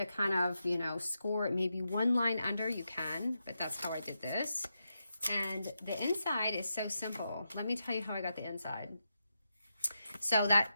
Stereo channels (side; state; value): both; inverted; correlation -0.86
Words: kind of, you know, score it maybe one line under, you can, but that's how I did this. And the inside is so simple. Let me tell you how I got the inside. So that